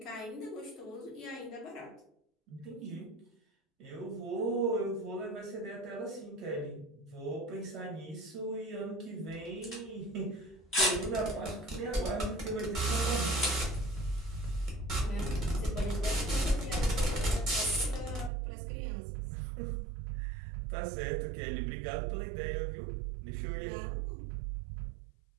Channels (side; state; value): left; drops out; at 18.3 s